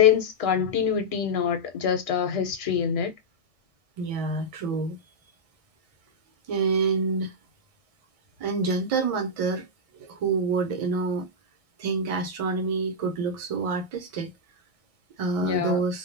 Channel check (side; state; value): left; late; 1.6 ms